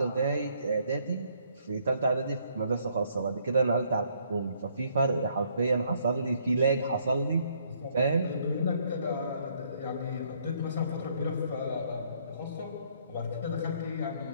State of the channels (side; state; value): both; inverted; correlation -0.67